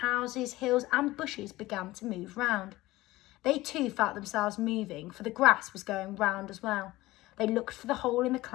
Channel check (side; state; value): right; quieter; 18.3 dB